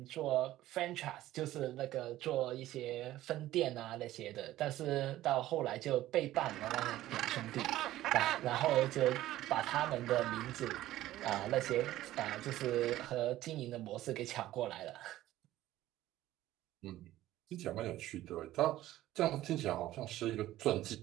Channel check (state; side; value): quieter; left; 14.8 dB